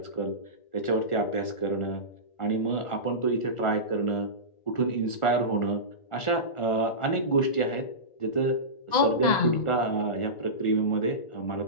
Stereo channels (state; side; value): late; right; 1.4 ms